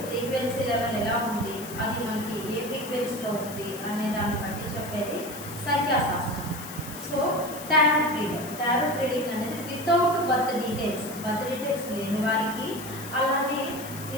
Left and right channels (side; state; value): left; noise; hiss, 13 dB below the sound